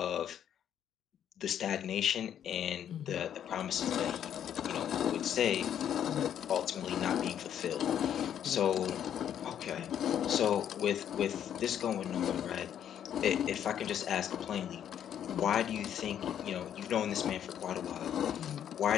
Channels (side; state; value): right; quieter; 9.7 dB